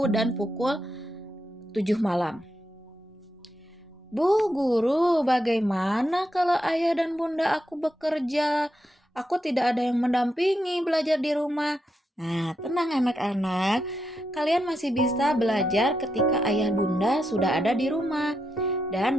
dan pukul 7 malam. Bu guru, bagaimana kalau ayah dan bunda aku bekerja? Aku tidak ada yang mendampingi belajar di rumah. Nah, tenang anak-anak, kalian masih bisa belajar ketika ayah bunda sudah ada di rumah dan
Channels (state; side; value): normal; both; correlation 0.84